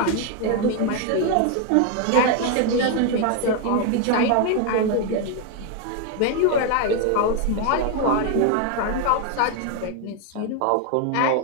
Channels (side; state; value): both; different; correlation 0.01